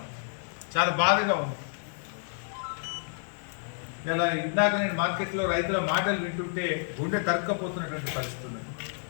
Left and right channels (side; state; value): right; silent; 58 dB below the other